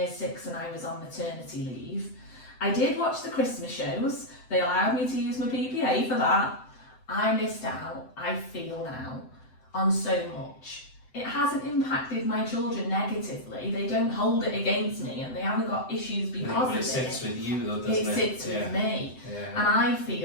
6 and I was on maternity leave. I did watch the Christmas shows, they allowed me to use my PPA for that. I missed out, I feel now, on so much. It hasn't impacted my children negatively, they don't hold it against me, and they haven't got issues because of it. It sits with you though, doesn't it? It sits with me. And I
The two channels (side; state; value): right; late; 7.8 ms